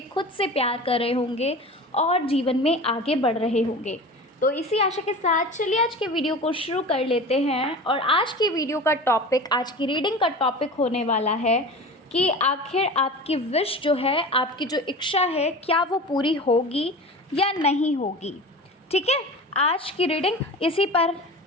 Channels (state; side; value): normal; both; correlation 0.34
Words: खुद से प्यार कर रहे होंगे और जीवन में आगे बढ़ रहे होंगे। तो इसी आशा के साथ चलिए आज के वीडियो को शुरू कर लेते हैं। और आज की वीडियो का टॉपिक, आज की रीडिंग का टॉपिक होने वाला है कि आखिर आपकी विश जो है, आपकी जो इच्छा है, क्या वो पूरी होगी या नहीं होगी। ठीक है, आज की रीडिंग इसी पर